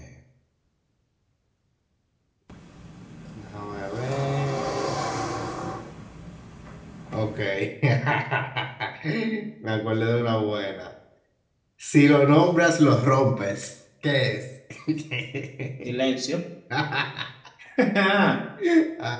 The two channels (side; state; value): both; identical; correlation 1.00